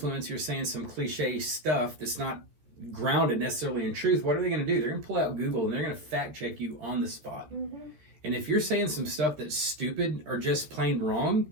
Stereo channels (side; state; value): left; late; 14 ms